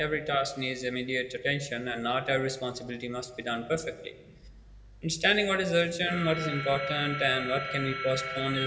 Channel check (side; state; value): both; identical; correlation 1.00